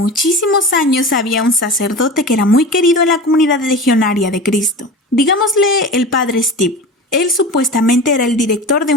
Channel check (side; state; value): both; normal; correlation 0.32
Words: años había un sacerdote que era muy querido en la comunidad legionaria de Cristo. Digámosle el padre Steve. Él supuestamente era el director de